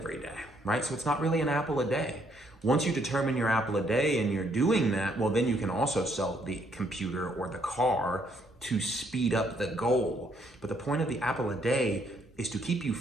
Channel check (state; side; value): normal; both; correlation 0.70